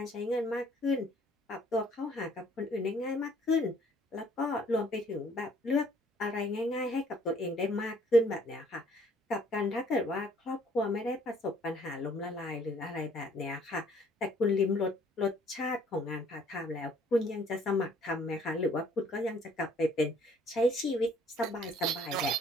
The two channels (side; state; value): both; normal; correlation 0.60